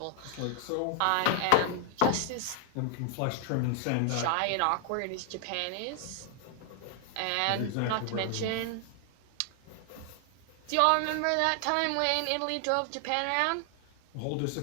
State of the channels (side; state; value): both; different; correlation 0.00